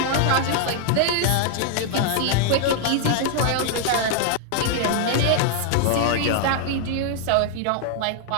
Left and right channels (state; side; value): different; both; correlation -0.01